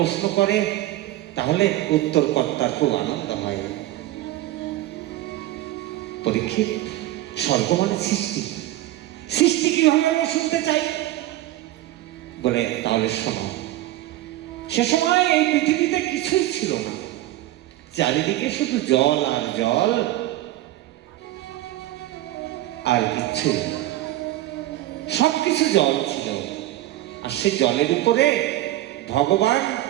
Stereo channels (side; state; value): left; quieter; 15.3 dB